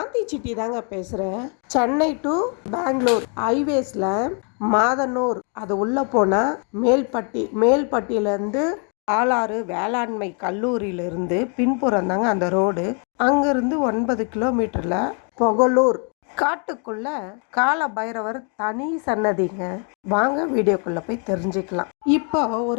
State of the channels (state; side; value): quieter; right; 39.4 dB